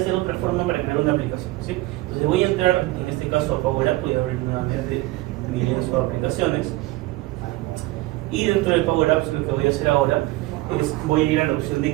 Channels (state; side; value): quieter; left; 19.3 dB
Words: otra forma para crear una aplicación, ¿sí? Entonces voy a entrar, en este caso a Power App, voy a abrir nuevamente mi lienzo de aplicaciones, y dentro de Power Apps lo que voy a hacer ahora es, voy a ir a la opción de